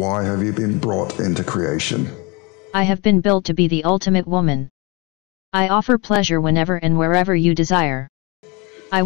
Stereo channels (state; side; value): quieter; right; 28.3 dB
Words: have you been brought into creation? I have been built to be the ultimate woman. I offer pleasure whenever and wherever you desire. I